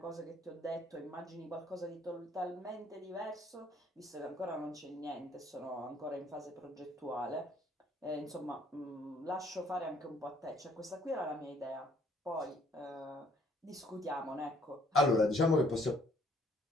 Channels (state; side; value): normal; both; correlation 0.62